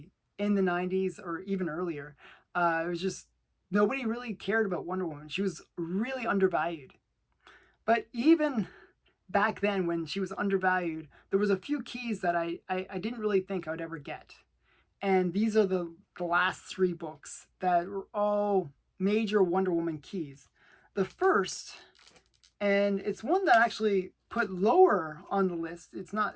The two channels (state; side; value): identical; both; correlation 1.00